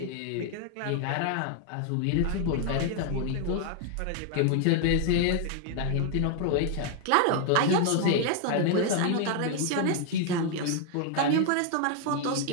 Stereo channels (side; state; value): both; different; correlation 0.00